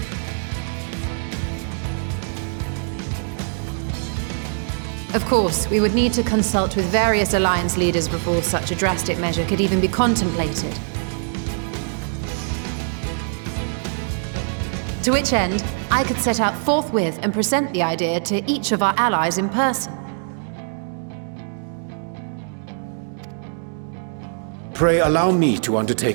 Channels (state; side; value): silent; left; digital silence